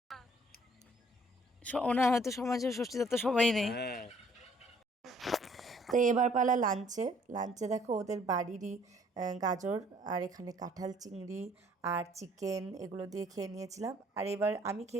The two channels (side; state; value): both; normal; correlation 0.60